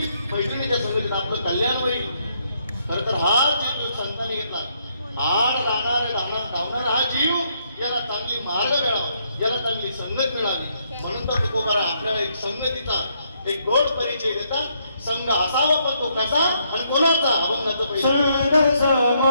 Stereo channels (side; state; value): both; inverted; correlation -0.73